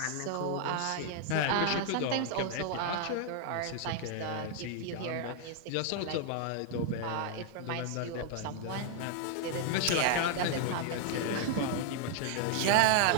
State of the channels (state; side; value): different; both; correlation 0.00